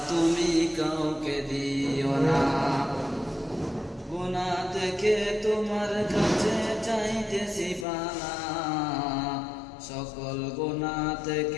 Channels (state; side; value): drops out; right; at 7.9 s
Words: তুমি কাউকে দিও না। গুনাহ থেকে তোমার কাছে চাইতেছি পানা, সকল গুনাহ